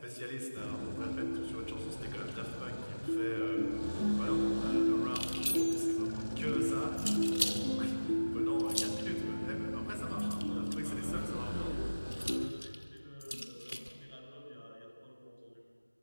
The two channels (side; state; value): both; inverted; correlation -1.00